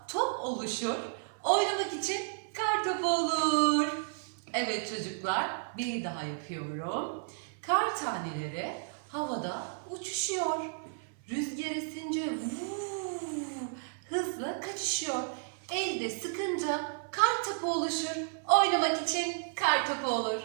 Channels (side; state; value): left; silent; 56 dB below the other